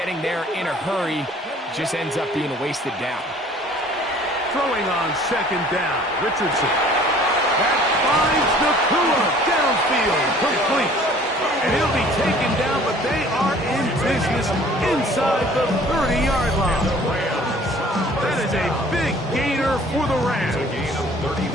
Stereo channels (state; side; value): normal; both; correlation 0.52